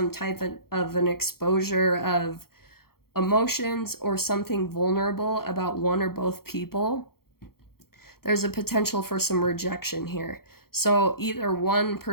type of an exposure of emotions or something vulnerable about one or both people, there's a potential for some rejection here. So either one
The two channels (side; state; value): right; late; 0.94 ms